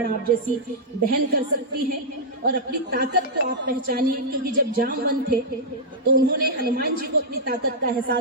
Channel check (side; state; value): both; normal; correlation -0.08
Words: आप जैसी बहन कर सकती हैं। और अपनी ताकत को आप पहचानिए, क्योंकि जब जामवंत थे तो उन्होंने हनुमान जी को अपनी ताकत का